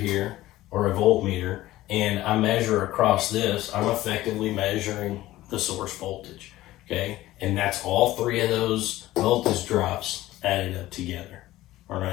or a voltmeter and I measure across this, I'm effectively measuring the source voltage. Okay, and that's all 3 of those voltage drops added up together. All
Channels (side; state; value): right; quieter; 16.2 dB